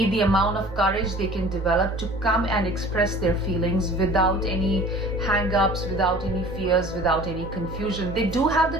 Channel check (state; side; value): normal; both; correlation 0.45